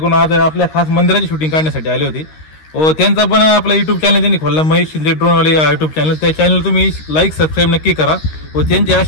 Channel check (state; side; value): late; right; 13 ms